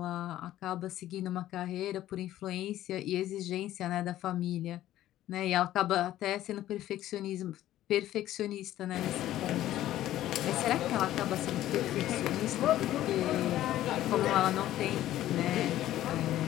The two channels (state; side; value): quieter; right; 13.6 dB